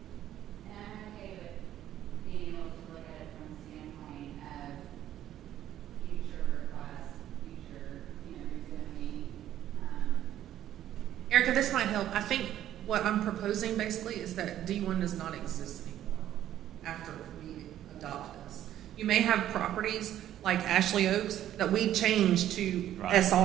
okay with being able to look at it from the standpoint of future requests, future, rezoning. Erica, this might help. I think what I'm proposing basically is that D1 does not exist anymore after we adopt this. You may have properties like Ashley Oaks that we change to Right.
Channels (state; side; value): quieter; left; 12.0 dB